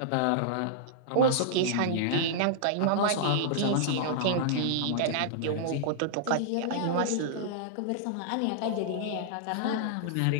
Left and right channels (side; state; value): both; different; correlation -0.02